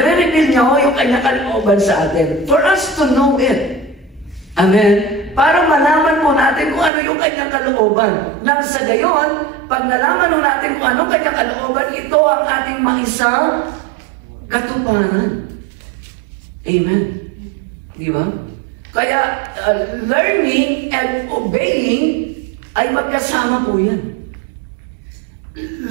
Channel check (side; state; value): left; drops out; at 6.9 s